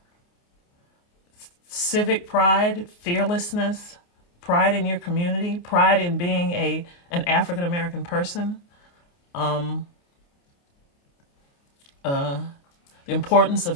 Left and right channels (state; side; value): late; right; 29 ms